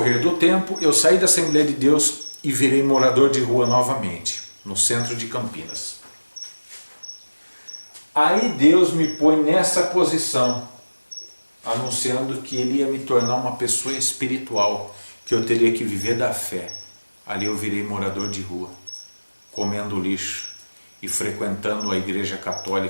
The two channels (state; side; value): inverted; both; correlation -1.00